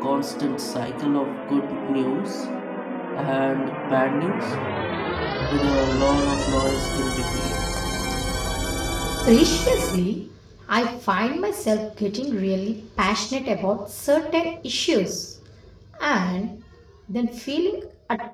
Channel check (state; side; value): identical; both; correlation 1.00